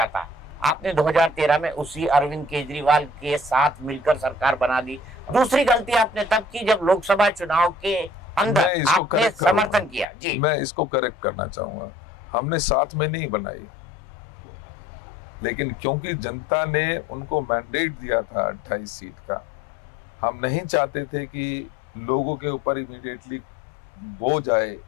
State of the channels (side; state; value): right; drops out; at 10.1 s